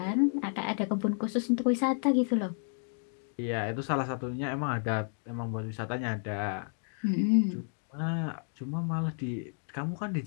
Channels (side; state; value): right; silent; 57 dB below the other